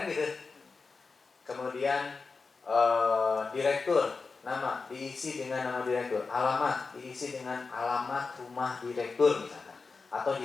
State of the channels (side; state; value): right; quieter; 4.4 dB